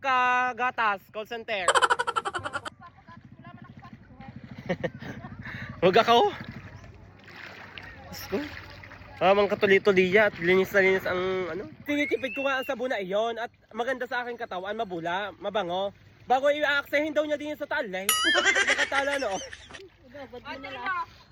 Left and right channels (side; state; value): both; identical; correlation 1.00